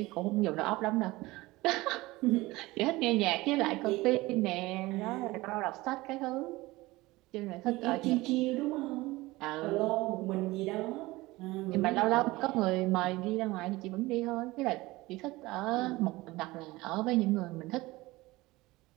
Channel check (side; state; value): left; quieter; 20.2 dB